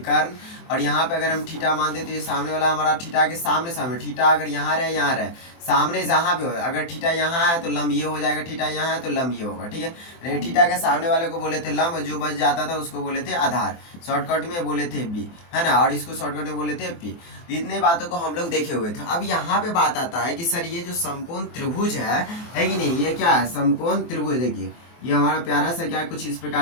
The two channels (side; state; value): right; late; 24 ms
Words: और यहाँ पे अगर हम थीटा मानते तो ये सामने वाला हमारा थीटा के सामने सामने, थीटा अगर यहाँ रहे यहाँ रहे, सामने जहाँ पे हो, अगर थीटा यहाँ है तो लंब ये हो जाएगा, थीटा यहाँ है तो लंब ये होगा। ठीक है, थीटा के सामने वाले को बोले थे लंब, जो बच जाता था उसको बोले थे आधार, शॉर्टकट में बोले थे बी, है ना। और इसको शॉर्टकट में बोले थे पी। तो इतने बातों को हम लोग देखे हुए थे। अब यहाँ पे बात आता है कि सर ये जो समकोण त्रिभुज है कि नहीं, ये क्या है, समकोण त्रिभुज। देखिए ये हमारा प्यारा सा क्या, कुछ इस